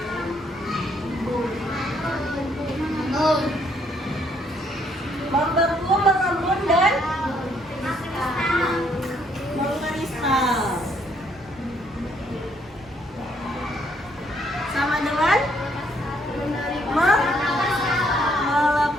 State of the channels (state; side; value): normal; both; correlation 0.69